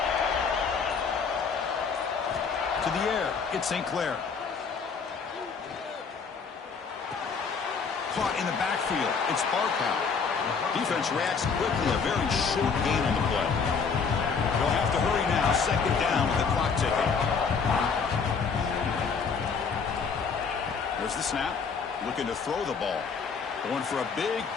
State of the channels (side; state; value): right; quieter; 5.6 dB